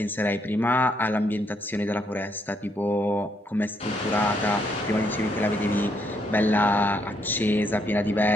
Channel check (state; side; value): normal; both; correlation 0.74